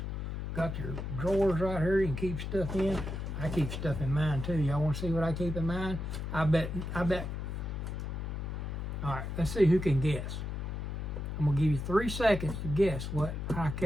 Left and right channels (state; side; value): noise; left; hum, 4 dB below the sound